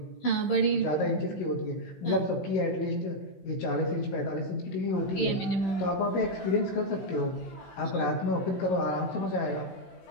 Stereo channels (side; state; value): right; late; 15 ms